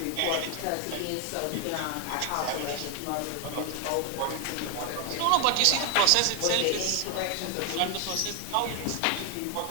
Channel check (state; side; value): different; both; correlation 0.00